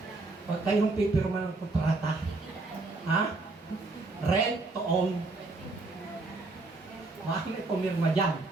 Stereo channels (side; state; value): left; quieter; 3.4 dB